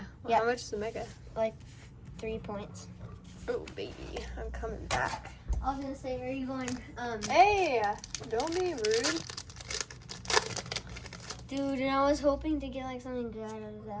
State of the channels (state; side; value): identical; both; correlation 1.00